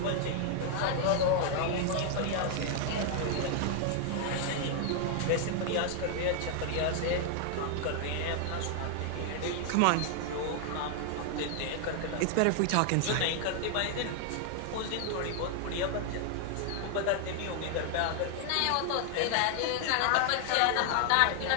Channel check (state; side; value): different; both; correlation 0.00